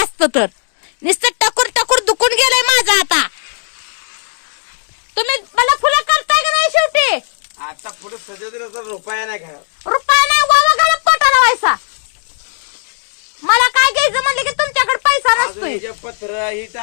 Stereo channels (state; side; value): silent; right; digital silence